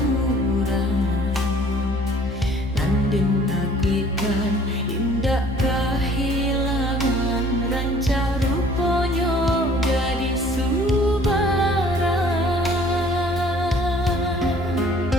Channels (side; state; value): both; normal; correlation 0.54